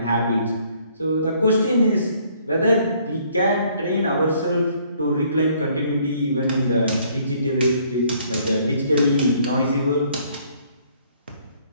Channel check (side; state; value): both; inverted; correlation -0.63